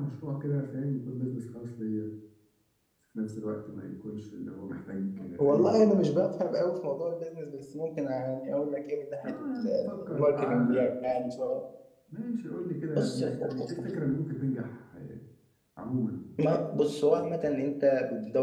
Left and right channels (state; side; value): identical; both; correlation 1.00